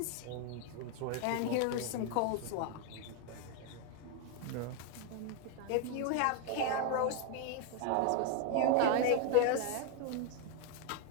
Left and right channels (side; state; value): both; different; correlation 0.01